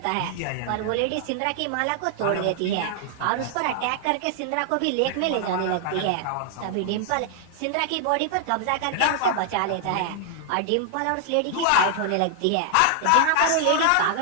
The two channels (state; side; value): different; both; correlation 0.00